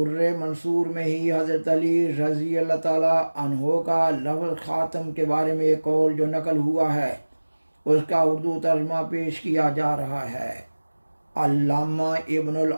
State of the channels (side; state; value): both; inverted; correlation -1.00